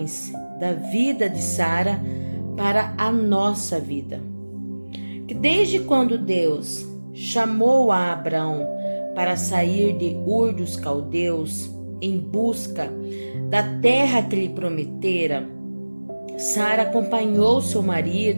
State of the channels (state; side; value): inverted; both; correlation -1.00